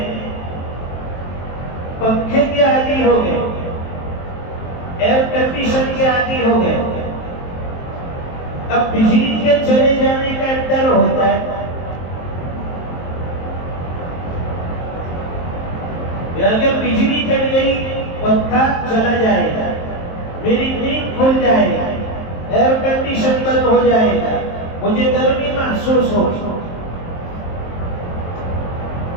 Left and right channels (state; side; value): late; right; 23 ms